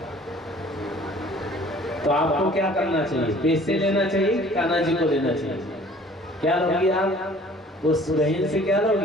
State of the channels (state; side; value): normal; both; correlation 0.52